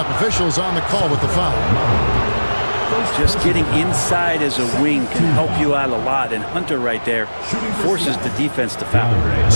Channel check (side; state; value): both; inverted; correlation -1.00